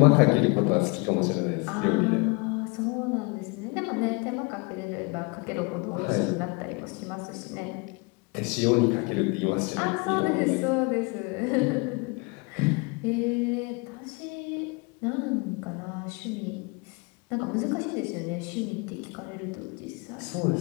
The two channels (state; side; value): quieter; right; 29.3 dB